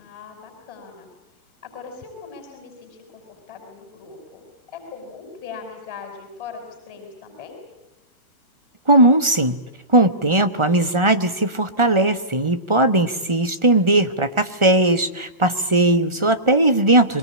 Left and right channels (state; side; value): late; left; 1.4 ms